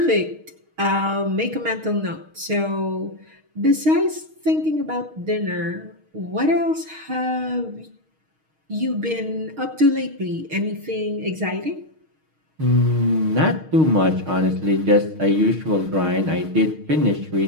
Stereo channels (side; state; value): left; late; 6.4 ms